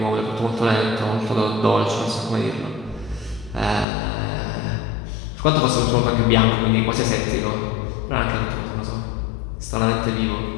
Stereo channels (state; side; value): drops out; right; at 3.9 s